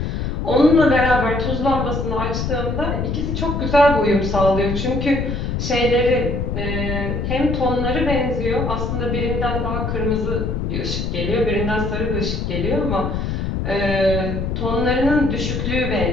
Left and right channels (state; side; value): noise; left; rumble, 2 dB below the sound